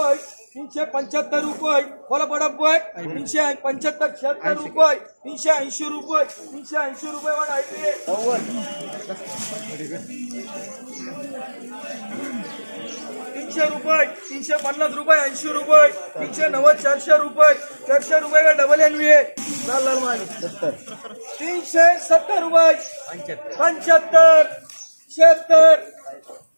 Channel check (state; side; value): inverted; both; correlation -1.00